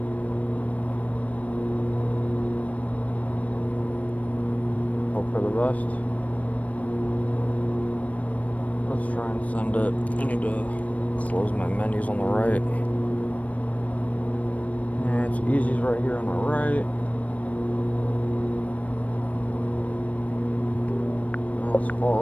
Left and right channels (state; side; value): late; right; 0.068 ms